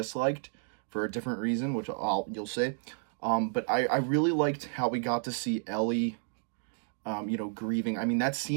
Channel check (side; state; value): left; silent; digital silence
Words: for a different reason, which you'll see. But I really liked how we got to see Ellie, grieving. I mean, that